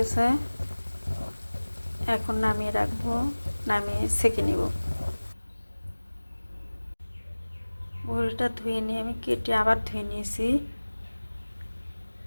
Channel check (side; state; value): both; inverted; correlation -1.00